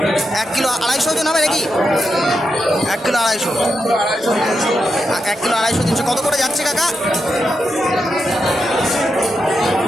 1 kilo 250 ওজন হবে নাকি? 1 কিলো 250, 1 কিলো 250, 300। কত করে যাচ্ছে কাকা?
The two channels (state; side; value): normal; both; correlation 0.85